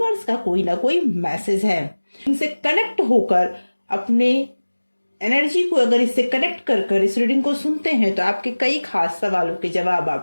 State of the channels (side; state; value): both; inverted; correlation -1.00